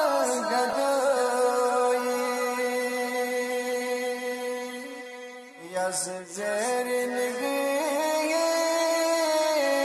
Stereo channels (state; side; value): identical; both; correlation 1.00